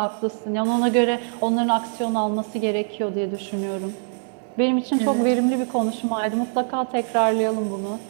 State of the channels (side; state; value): left; silent; digital silence